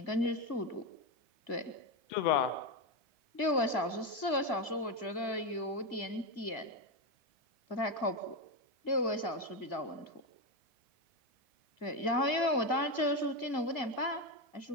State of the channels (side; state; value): right; late; 2.1 ms